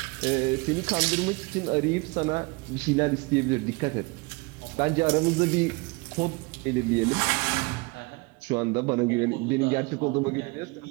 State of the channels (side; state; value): left; quieter; 27.2 dB